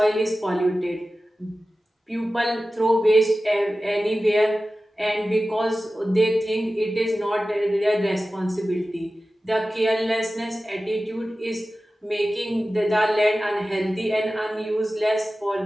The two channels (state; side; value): normal; both; correlation 0.95